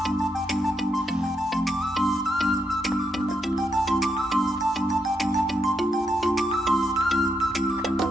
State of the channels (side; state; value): both; normal; correlation 0.80